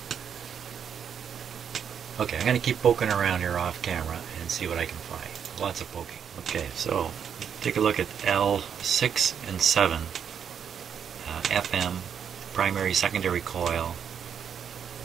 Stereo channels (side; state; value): left; quieter; 7.8 dB